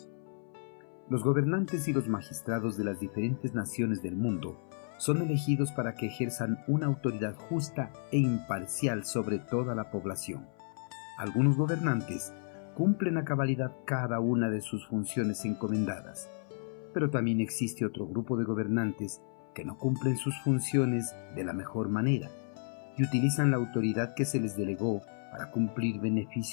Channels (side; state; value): right; silent; 56 dB below the other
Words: Los gobernantes y los magistrados de las diferentes naciones del mundo son elegidos para que ejerzan una autoridad justa e imparcial sobre toda la población. Algunos gobernantes cumplen a cabalidad cada una de sus funciones encomendadas, pero también existe otro grupo de gobernantes que no cumplen sus funciones de la mejor manera y utilizan la autoridad que se les delegó para cumplir